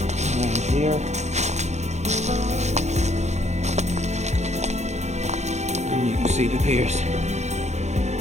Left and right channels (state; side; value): late; left; 0.33 ms